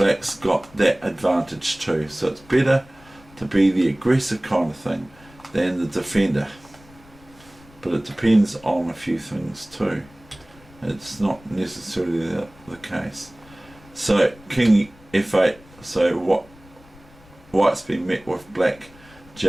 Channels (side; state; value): left; noise; rumble, 25 dB below the sound